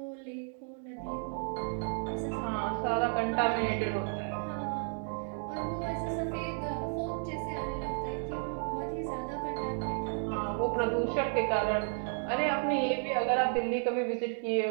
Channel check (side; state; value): left; silent; 56 dB below the other